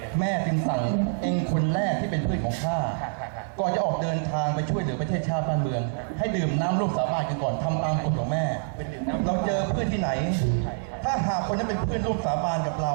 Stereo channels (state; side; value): silent; left; 60 dB below the other